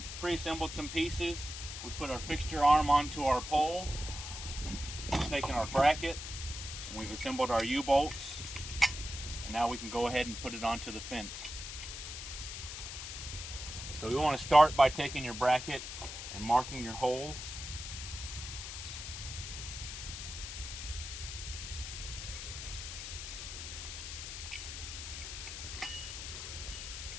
pre-assembled some pieces. We put our fixture arm onto our pole, taken our bracket, and we've assembled our U-bolts, and now we can go ahead and put it onto the fence. So we want to start by taking your bracket and marking your holes.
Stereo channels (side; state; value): left; noise; hiss, 8 dB below the sound